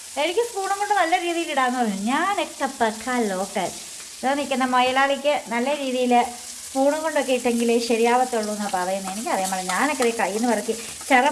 എനിക്ക് സ്പൂണും കൊണ്ട് നല്ല രീതിയിൽ ഇടാന്ന് പറഞ്ഞു. ഞാനൊക്കെ പക്കാ ലോക്കൽ. ഇതാ നിൽക്കുന്ന മൊയലാളിക്ക് നല്ല രീതിയിൽ സ്പൂണും കൊണ്ടൊക്കെ ഇട്ടെങ്കിലേ ശരിയാവത്തുള്ളൂ എന്നാണ് പറയുന്നത്. എനിക്കറിയാൻ പാടില്ല. ഞാനൊക്കെ കയ്യിൽ നിന്ന് പറക്കി ചെറ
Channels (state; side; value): identical; both; correlation 1.00